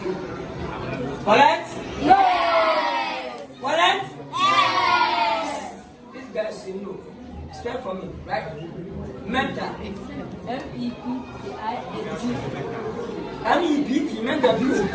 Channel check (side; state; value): both; identical; correlation 1.00